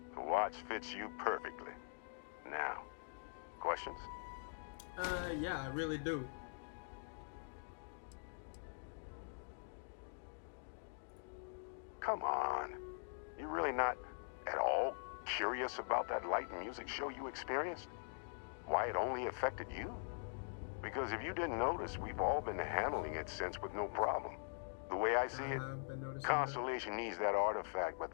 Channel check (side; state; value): right; silent; digital silence